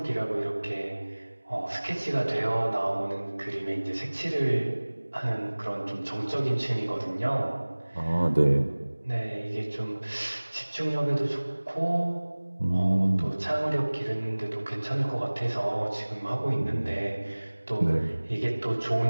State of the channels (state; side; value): inverted; both; correlation -1.00